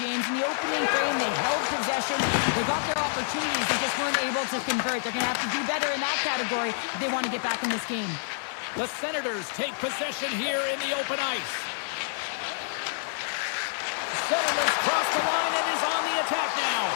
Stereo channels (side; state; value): right; silent; digital silence